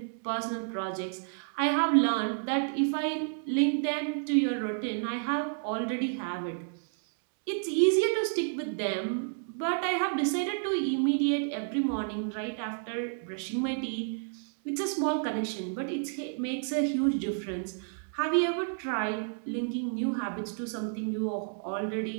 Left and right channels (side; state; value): left; silent; digital silence